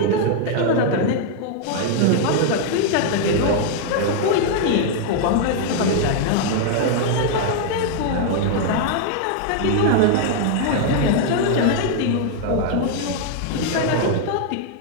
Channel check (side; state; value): both; different; correlation 0.00